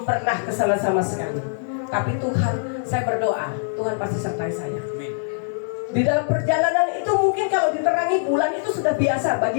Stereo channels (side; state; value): right; silent; digital silence